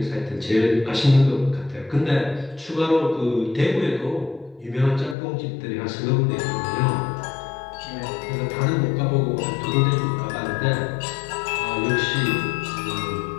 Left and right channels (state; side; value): drops out; right; at 5.2 s